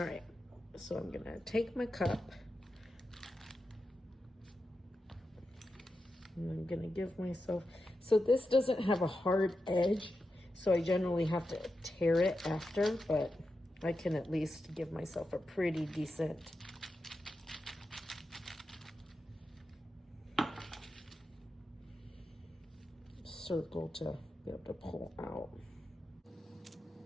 right, so I'm gonna take my cup and I'm gonna give myself, so this doesn't have a hard edge, so I generally have to tear it after, but I can at least give myself a pretty decent circle to be able to pull out.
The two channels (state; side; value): normal; both; correlation 0.89